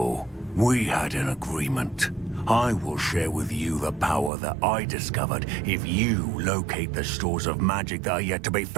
We had an agreement. I will share with you the power that I discovered if you locate the stores of magic that are yet to be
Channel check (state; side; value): drops out; left; at 4.3 s